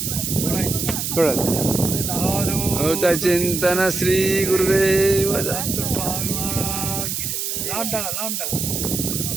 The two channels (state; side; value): noise; right; hiss, 2 dB below the sound